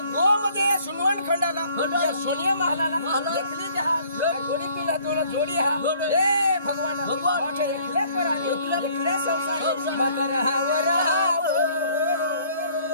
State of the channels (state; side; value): inverted; both; correlation -0.58